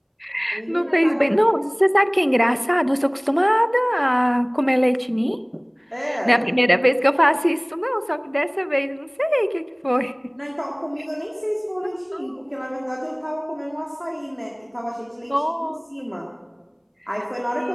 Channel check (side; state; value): both; identical; correlation 1.00